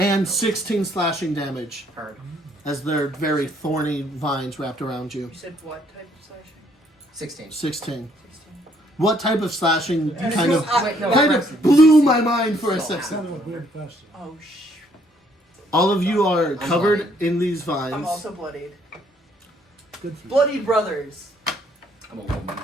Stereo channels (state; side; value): normal; both; correlation 0.67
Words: 16 slashing damage. Hard. As their very thorny vines wrapped around you. You said what type of slashing? 16. 16. 16. What type of slashing kind of Wait, no, kind Braxton, of blew my mind for a So- That's second? kind of a weird question. Oh, All of you are covered bloodied. in these vines. I'm also bloodied. Good for you. Bloody brothers. I'm a woman.